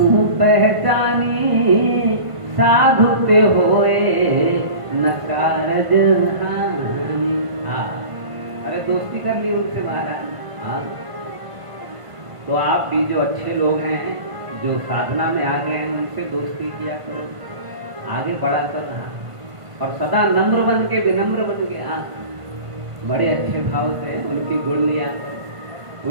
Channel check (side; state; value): left; late; 1.5 ms